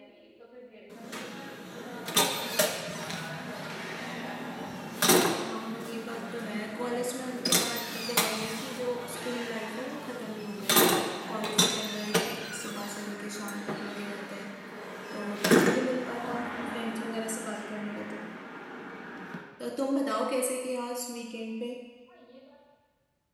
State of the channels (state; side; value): identical; both; correlation 1.00